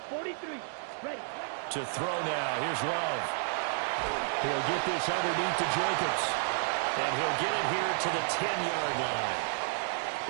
43, ready. To throw now, here's Love. He'll get this underneath to Jacobs. And he'll get it here to the 10-yard line.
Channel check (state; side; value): silent; left; digital silence